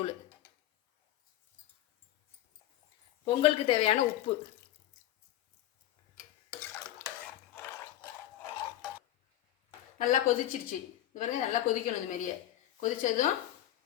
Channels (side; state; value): right; quieter; 13.2 dB